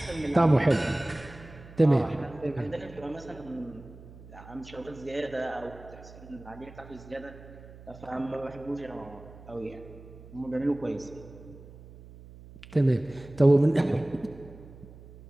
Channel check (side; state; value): right; noise; hum, 18 dB below the sound